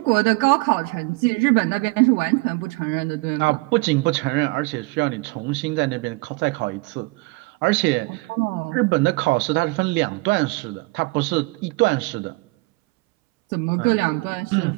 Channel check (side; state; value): left; quieter; 25.6 dB